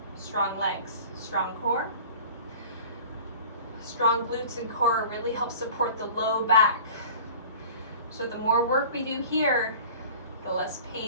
Strong legs, strong core. Strong glutes and core really help support the low back. So the more work we do here, the less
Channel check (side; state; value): both; inverted; correlation -0.42